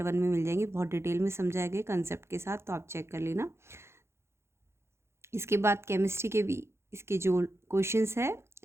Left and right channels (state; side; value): late; left; 0.13 ms